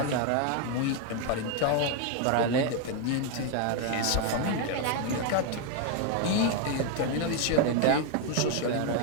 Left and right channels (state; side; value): different; both; correlation 0.01